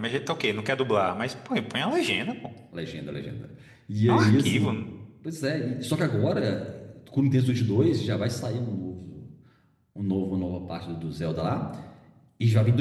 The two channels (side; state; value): both; identical; correlation 1.00